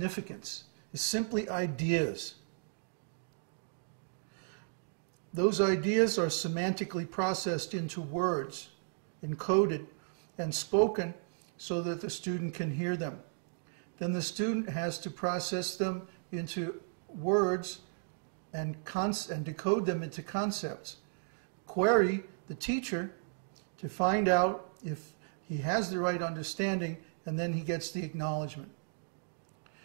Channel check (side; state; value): left; silent; digital silence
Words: It's simply ideas. Those ideas are semantically processed into words, encoded, and spoken so that the student can hear them. Then the student has to process them into words and decode them into concepts. Query the teacher to find out if he has the right understanding, and then he gets the acknowledgement.